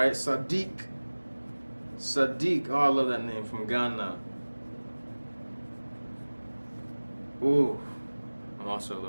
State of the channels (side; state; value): both; inverted; correlation -1.00